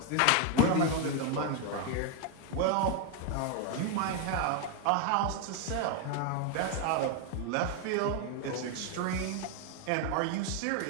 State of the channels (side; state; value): both; different; correlation 0.01